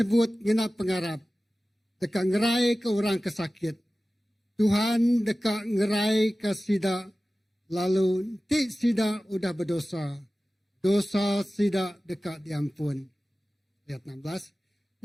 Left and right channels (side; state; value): both; normal; correlation 0.96